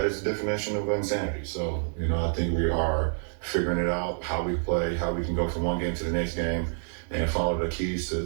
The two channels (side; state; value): left; silent; 59 dB below the other